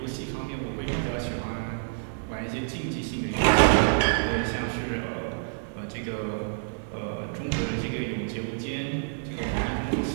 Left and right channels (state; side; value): silent; left; digital silence